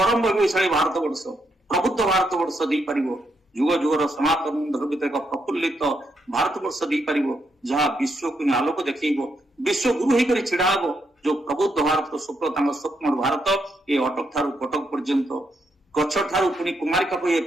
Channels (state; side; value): normal; both; correlation 0.79